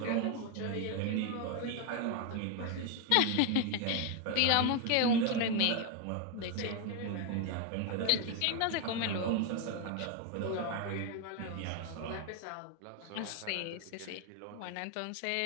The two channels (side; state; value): both; different; correlation 0.01